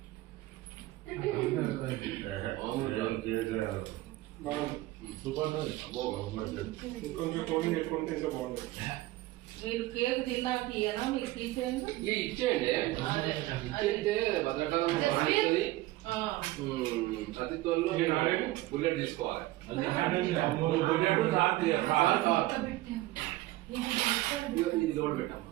కొంచెం కోటింగ్ పెట్టుకుంటే ఇంకా బాగుంటుంది. మీరు కేక్ తిన్నాక ఇయ్యనా మీకు తీసేయండి ఇచ్చేయండి. ఇచ్చేస్తే భద్రకాలం బాగుంటుంది. అతిథుల్లో బుల్లెట్ తీసుకోవాలి. ఇది లోడ్ పెట్టాము.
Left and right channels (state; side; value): quieter; left; 17.7 dB